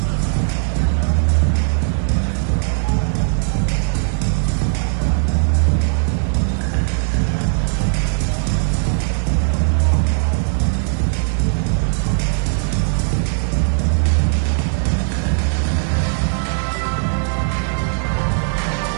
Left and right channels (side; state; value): left; silent; digital silence